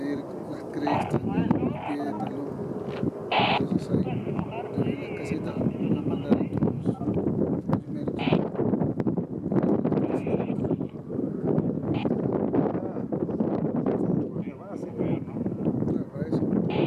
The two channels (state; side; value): identical; both; correlation 1.00